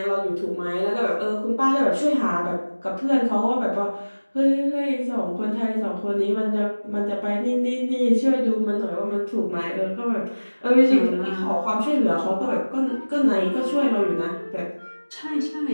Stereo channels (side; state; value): both; inverted; correlation -1.00